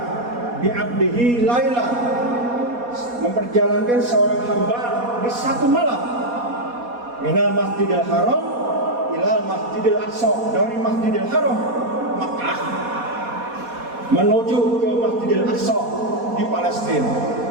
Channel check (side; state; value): left; late; 4.2 ms